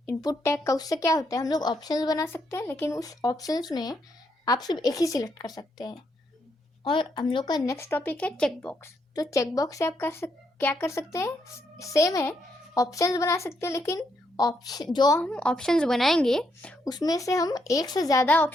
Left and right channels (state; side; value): normal; both; correlation 0.77